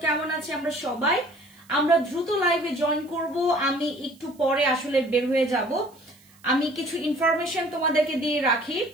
কেমন আছে? আমরা দ্রুত লাইভে জয়েন করব। আমি একটু পরে আসলে বের হয়ে যাব। আমি কিছু ইনফরমেশন তোমাদেরকে দিয়ে রাখি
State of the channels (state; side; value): noise; right; hiss, 29 dB below the sound